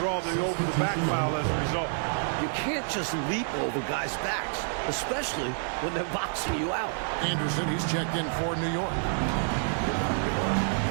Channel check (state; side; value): silent; left; digital silence